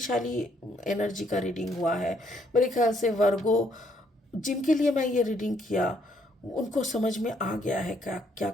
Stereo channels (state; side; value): normal; both; correlation 0.70